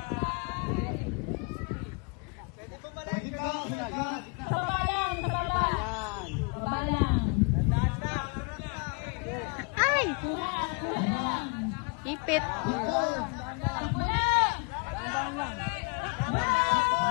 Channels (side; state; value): right; quieter; 33.5 dB